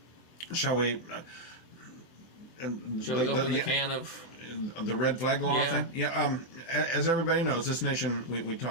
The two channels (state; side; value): late; right; 24 ms